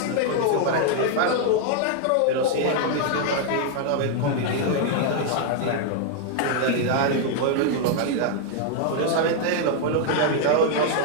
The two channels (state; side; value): different; both; correlation 0.00